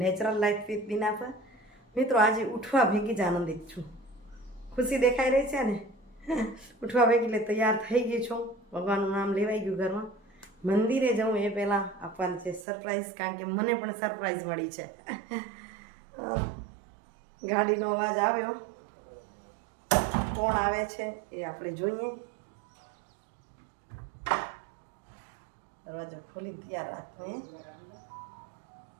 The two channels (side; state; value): left; drops out; at 12.7 s